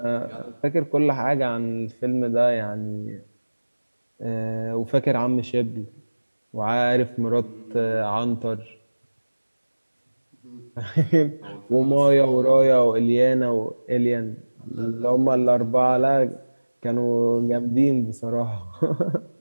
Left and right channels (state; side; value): inverted; both; correlation -1.00